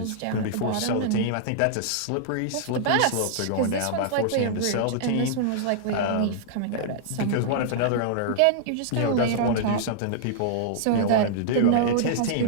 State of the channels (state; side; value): different; both; correlation -0.02